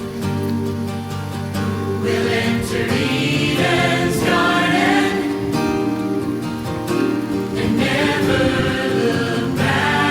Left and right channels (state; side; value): identical; both; correlation 1.00